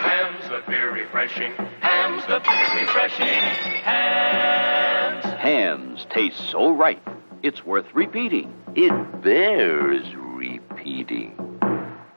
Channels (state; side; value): inverted; both; correlation -1.00